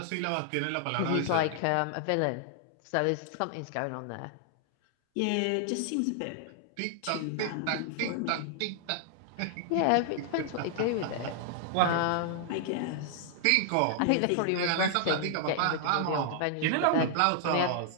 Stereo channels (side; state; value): both; different; correlation 0.00